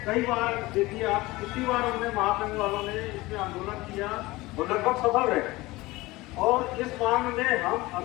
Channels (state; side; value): quieter; right; 20.3 dB